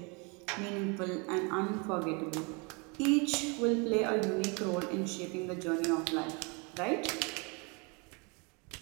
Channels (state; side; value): quieter; left; 31.6 dB